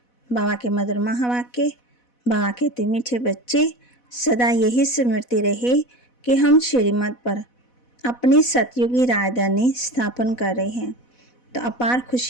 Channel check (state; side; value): late; right; 4.1 ms